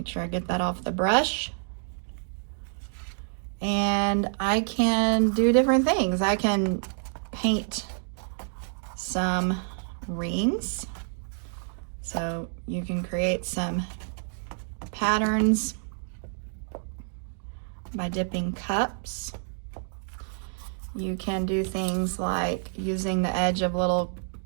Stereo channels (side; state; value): left; silent; digital silence